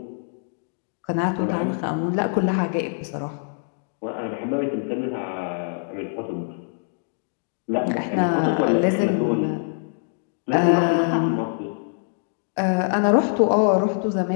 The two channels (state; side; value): silent; right; digital silence